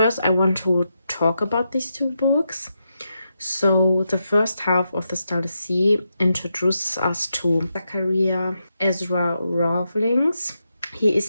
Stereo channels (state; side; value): inverted; both; correlation -0.85